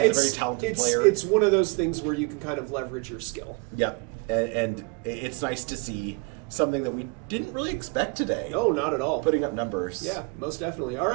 talented player. It's one of those things where you can kind of leverage your skill. Yeah, and it's nice to see something that we didn't really expect today. No, not at all. Putting up numbers. Yeah, most definitely. All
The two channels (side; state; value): left; quieter; 31.2 dB